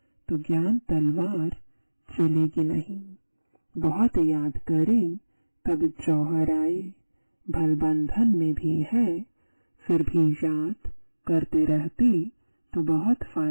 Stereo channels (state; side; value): inverted; both; correlation -1.00